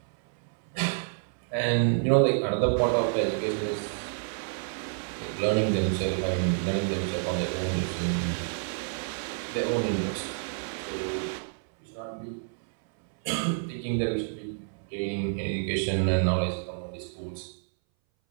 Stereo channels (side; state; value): left; silent; 59 dB below the other